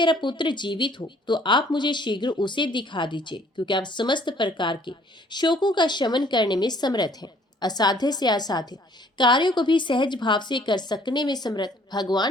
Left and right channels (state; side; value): normal; both; correlation 0.59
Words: पुत्र जीवित हो तो आप मुझे शीघ्र उसे दिखा दीजिए, क्योंकि आप समस्त प्रकार के शोकों का शमन करने में समर्थ हैं। असाध्य से असाध्य कार्यों को भी सहज भाव से कर सकने में समर्थ